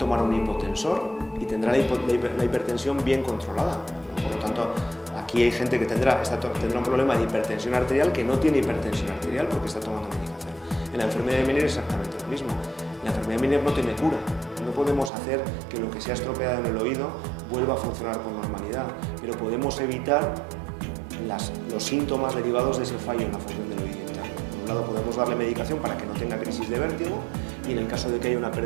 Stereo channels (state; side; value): drops out; left; at 15.1 s